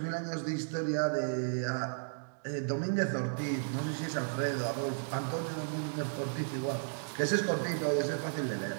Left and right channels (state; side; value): silent; left; digital silence